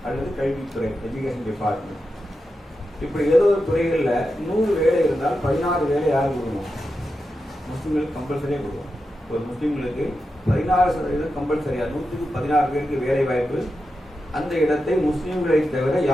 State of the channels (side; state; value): both; normal; correlation 0.89